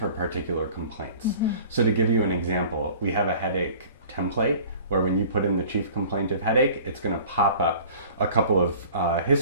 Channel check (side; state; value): both; inverted; correlation -0.46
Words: particular complaints. So to give you an example, we have a headache template where when you put in the chief complaint of headache, it's going to pop up a couple of